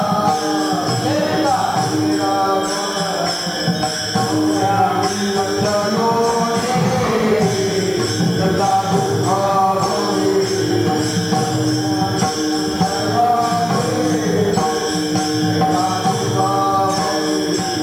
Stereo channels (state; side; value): noise; right; hiss, 22 dB below the sound